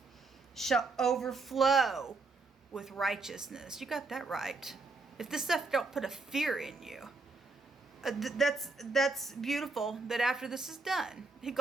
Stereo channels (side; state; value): left; quieter; 3.6 dB